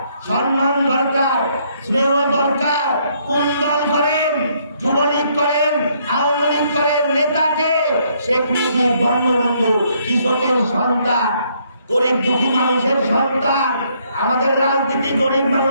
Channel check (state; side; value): inverted; both; correlation -0.70